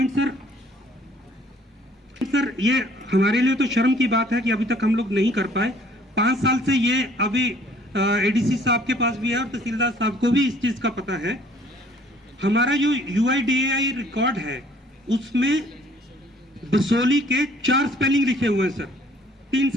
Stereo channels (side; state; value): both; normal; correlation 0.58